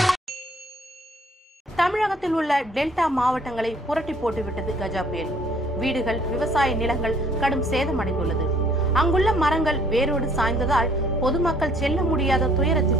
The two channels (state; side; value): normal; both; correlation 0.59